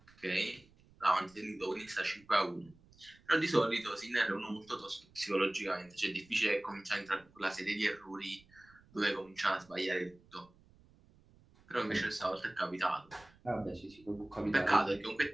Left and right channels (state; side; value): noise; right; rumble, 28 dB below the sound